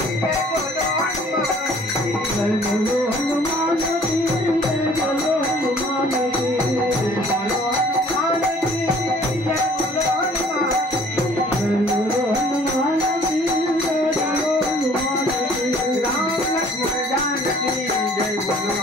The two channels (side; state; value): both; normal; correlation 0.54